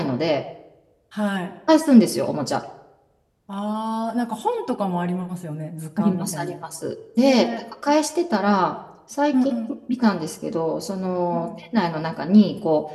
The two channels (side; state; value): both; identical; correlation 1.00